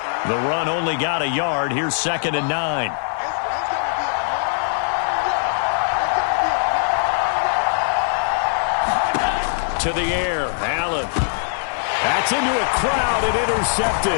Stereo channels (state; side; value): silent; right; digital silence